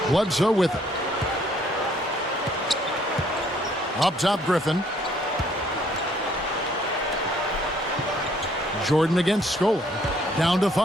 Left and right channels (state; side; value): normal; both; correlation 0.64